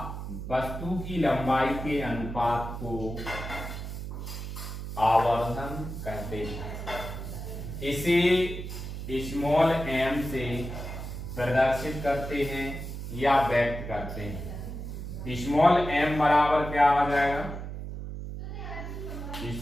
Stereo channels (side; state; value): right; noise; hum, 7 dB below the sound